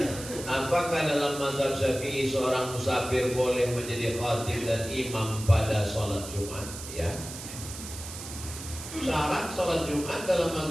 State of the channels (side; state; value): right; noise; hiss, 11 dB below the sound